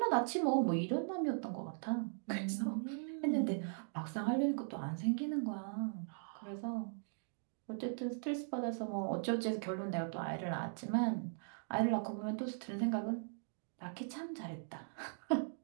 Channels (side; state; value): left; silent; digital silence